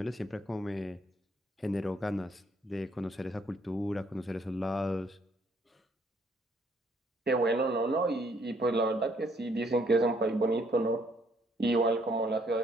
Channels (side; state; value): both; normal; correlation 0.67